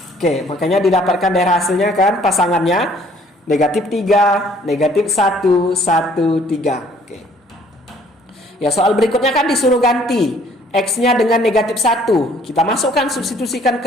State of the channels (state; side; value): normal; both; correlation 0.59